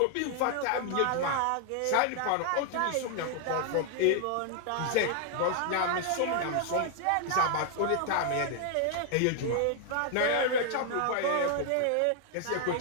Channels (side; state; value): both; different; correlation 0.00